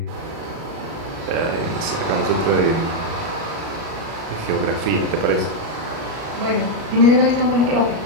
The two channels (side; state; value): left; late; 37 ms